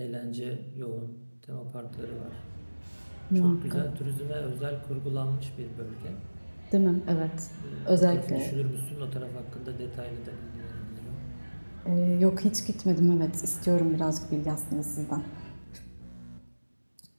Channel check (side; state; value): both; inverted; correlation -1.00